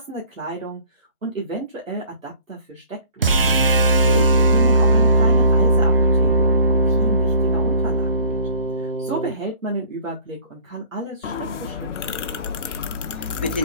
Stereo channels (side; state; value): both; inverted; correlation -0.52